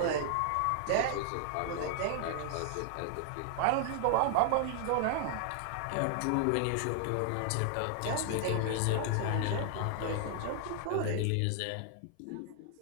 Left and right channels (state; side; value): different; both; correlation 0.00